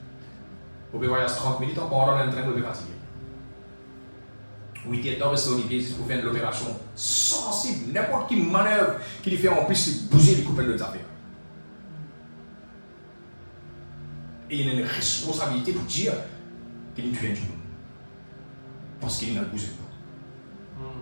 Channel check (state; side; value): inverted; both; correlation -1.00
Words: Vous pouvez voyager 30 minutes en pendant un train, vous pouvez fatiguer. 8 dans le sol, c'est pour faire l'opération sensible. N'importe qui manœuvre qui lui fait en plus bouger les coupelles de affaires. Et il a une responsabilité pour dire qu'il tue un du monde. Parce qu'il n'a bougé pas.